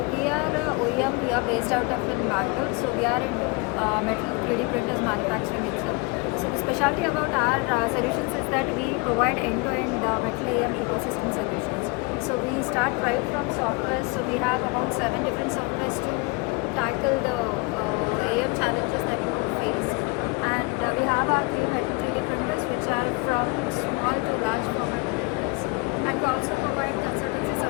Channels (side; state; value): right; quieter; 27.2 dB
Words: we are OEM. We are based out of in Bangalore. So we are into metal 3D printers manufacturing itself. So the specialty about our solutions is that we provide end-to-end metal AM ecosystem solutions. So we start right from software. So we have about 7 different softwares to tackle the AM challenges that we would face. And we have our 3D printers which are from small to large format printers. And we also provide consultancy